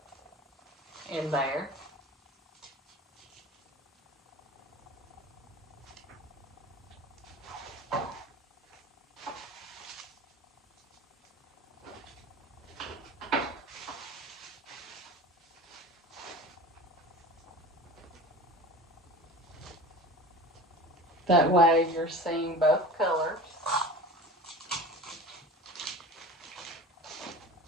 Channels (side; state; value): both; normal; correlation 0.36